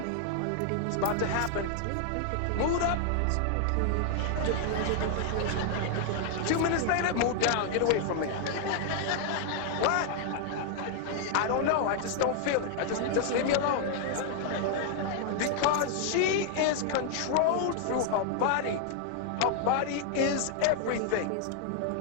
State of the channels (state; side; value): different; both; correlation 0.00